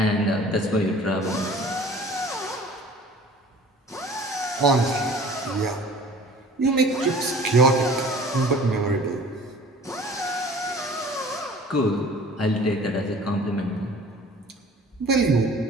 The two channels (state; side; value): normal; both; correlation 0.47